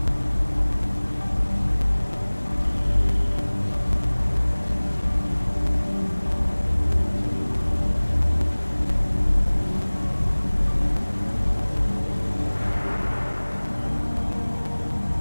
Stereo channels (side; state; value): both; inverted; correlation -1.00